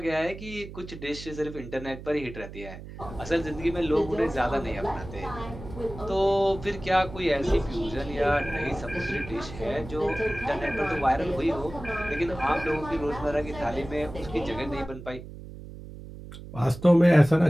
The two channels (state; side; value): noise; right; hum, 13 dB below the sound